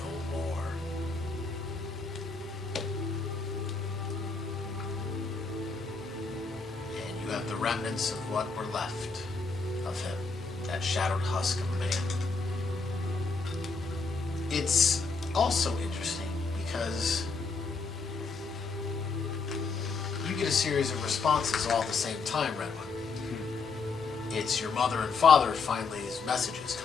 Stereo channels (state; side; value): quieter; right; 4.5 dB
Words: more. And you have the remnants of what were left of him, that shadowed husk of a man. It's also interesting because you get a series of responses all at the same time, Redwood. It's your mother and father finally's messages